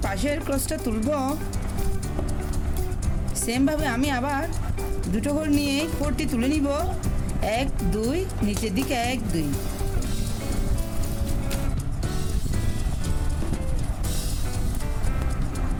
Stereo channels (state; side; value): identical; both; correlation 1.00